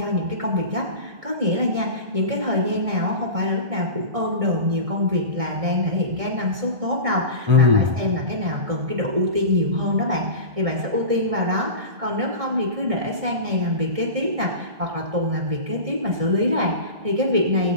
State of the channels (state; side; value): late; left; 1.6 ms